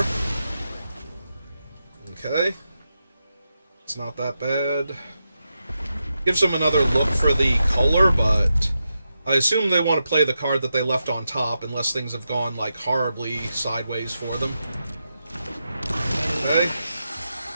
Okay. It's not that bad. Gives them another look for the color, but I assume they want to play the card that they left on top unless things have gone, like, horribly sideways for them. Okay.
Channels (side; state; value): both; inverted; correlation -0.88